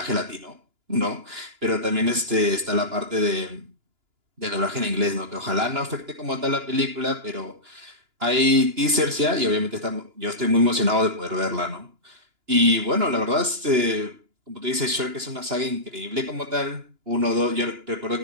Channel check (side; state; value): left; late; 2.9 ms